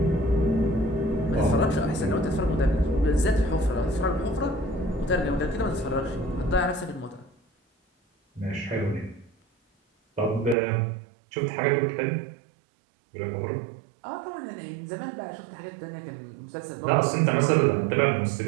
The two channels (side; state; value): left; drops out; at 10.6 s